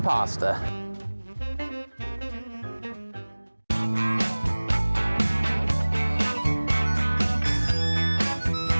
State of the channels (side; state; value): both; inverted; correlation -1.00